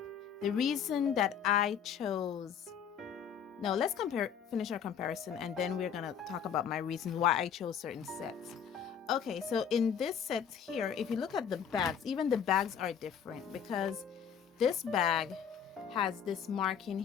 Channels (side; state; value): right; quieter; 7.9 dB